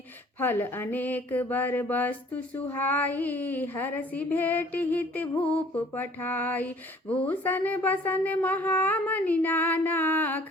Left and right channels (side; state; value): both; normal; correlation 0.54